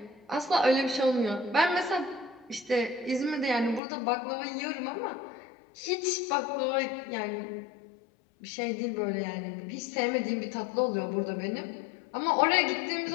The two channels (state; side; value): drops out; right; at 3.8 s